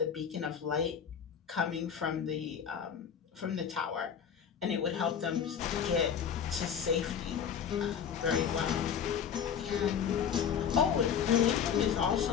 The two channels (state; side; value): quieter; right; 7.8 dB